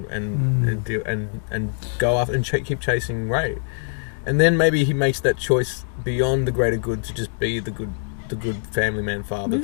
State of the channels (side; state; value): right; silent; digital silence